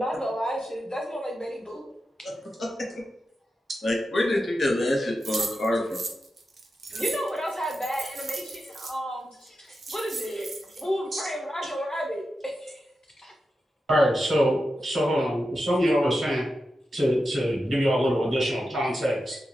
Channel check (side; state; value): both; normal; correlation 0.90